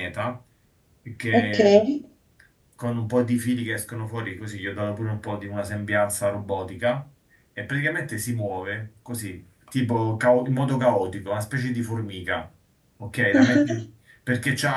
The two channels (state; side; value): identical; both; correlation 1.00